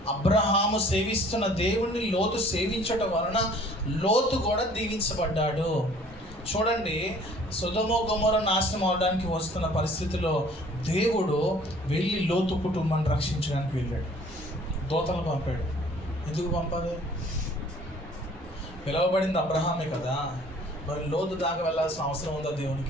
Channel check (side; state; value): both; normal; correlation 0.54